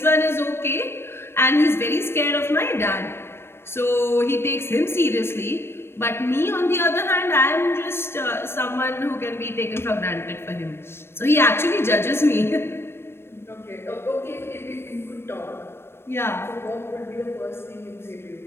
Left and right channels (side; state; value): right; late; 0.12 ms